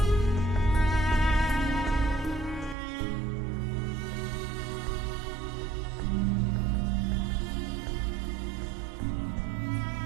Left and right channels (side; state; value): left; drops out; at 2.8 s